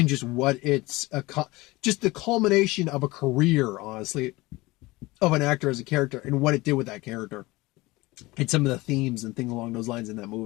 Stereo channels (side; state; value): right; quieter; 21.3 dB